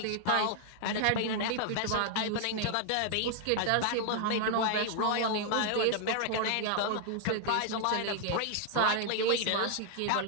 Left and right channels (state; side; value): different; both; correlation 0.00